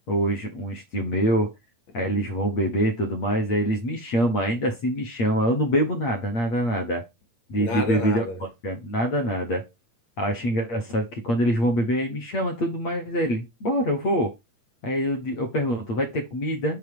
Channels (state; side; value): late; right; 8.6 ms